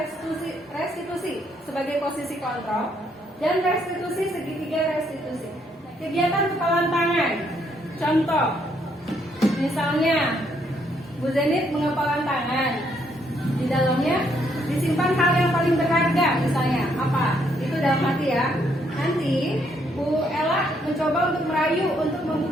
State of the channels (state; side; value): normal; both; correlation 0.72